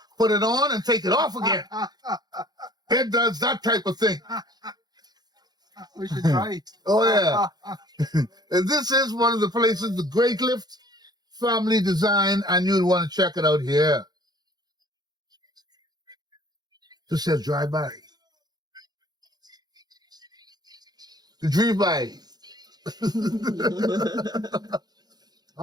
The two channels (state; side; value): late; left; 0.19 ms